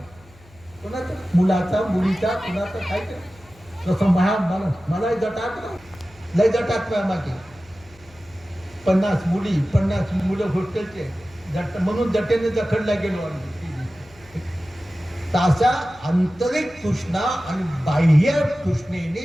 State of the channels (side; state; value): left; noise; hum, 26 dB below the sound